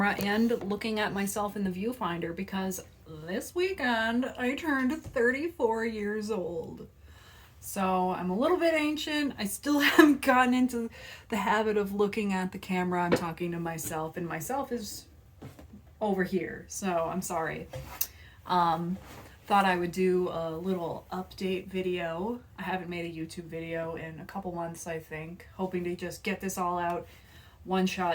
and looking at myself in the viewfinder because this weekend I turned 34 years old. So I'm a little bit ancient. I still haven't gotten into the habit of looking at the camera. I'm talking to myself, and myself is over here, so I'm sorry. Um, Thought I would do a little update video. I haven't made a YouTube video in a couple months, I think. Hoping to just get this all out. One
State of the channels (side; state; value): both; identical; correlation 1.00